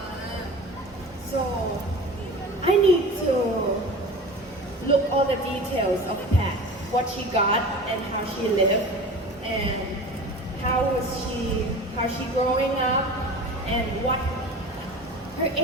So I need to look all the details of Pat, what she got and how she lived, and how she growing up, and what her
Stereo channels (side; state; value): both; normal; correlation 0.36